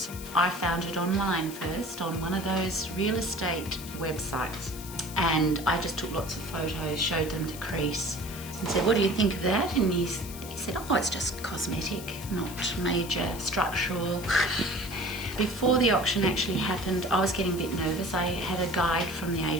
I found it online first on one of those real estate websites, and I just took lots of photos, showed them to Chris and said, what do you think of that? And he said, oh, it's just cosmetic, not major structural. Before the auction actually happened, I was getting a bit nervous. I had a guide from the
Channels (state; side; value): noise; left; hiss, 13 dB below the sound